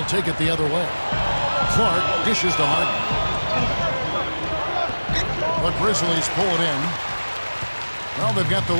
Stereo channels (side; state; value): both; inverted; correlation -1.00